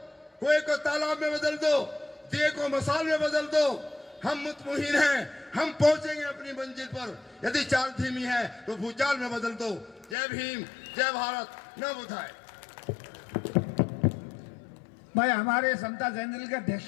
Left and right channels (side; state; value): right; drops out; at 10.2 s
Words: कुएं को तालाब में बदल दो, दिए को मसाल में बदल दो। हम मुतमईन हैं, हम पहुंचेंगे अपनी मंजिल पर। यदि चाल धीमी है तो भूचाल में बदल दो। जय भीम, जय भारत, न बुधाए। भाई हमारे समता जयंती के अध्यक्ष